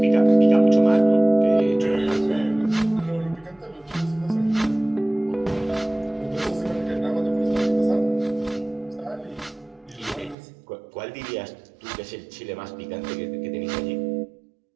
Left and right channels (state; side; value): drops out; left; at 10.4 s